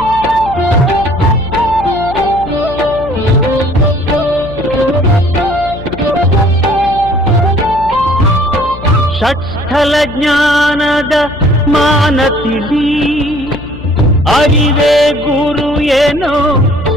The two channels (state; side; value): noise; left; hum, 13 dB below the sound